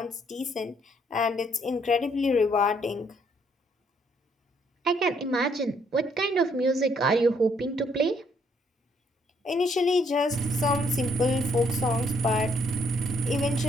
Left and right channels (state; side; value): normal; both; correlation 0.69